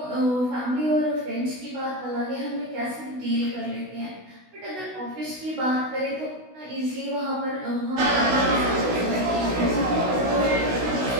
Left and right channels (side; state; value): left; late; 16 ms